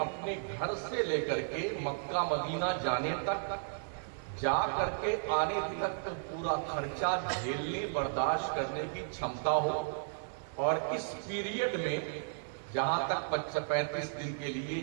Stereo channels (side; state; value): left; silent; digital silence